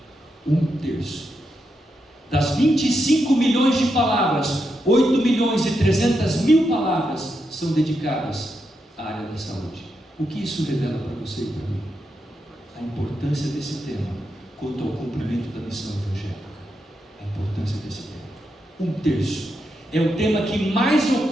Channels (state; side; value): normal; both; correlation 0.84